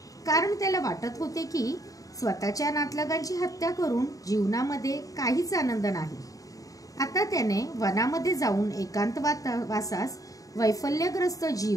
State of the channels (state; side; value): late; right; 0.17 ms